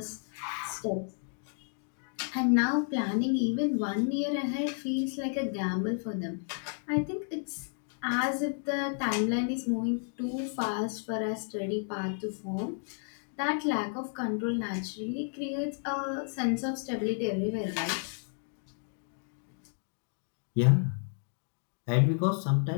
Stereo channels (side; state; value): right; silent; 56 dB below the other